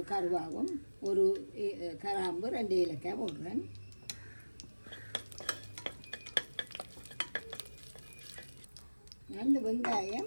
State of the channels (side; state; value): both; inverted; correlation -1.00